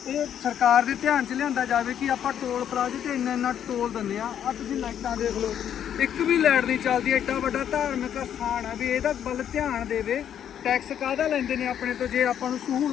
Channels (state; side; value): quieter; right; 9.5 dB